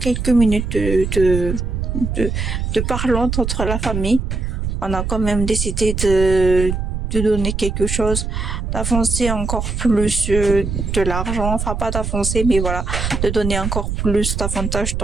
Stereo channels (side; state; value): right; noise; rumble, 2 dB below the sound